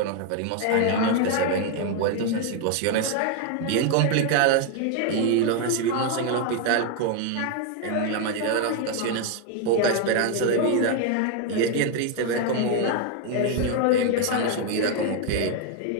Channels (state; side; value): different; both; correlation 0.00